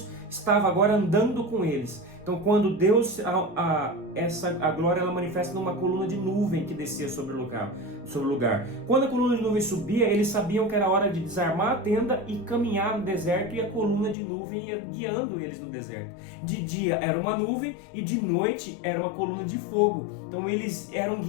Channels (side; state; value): right; drops out; at 14.2 s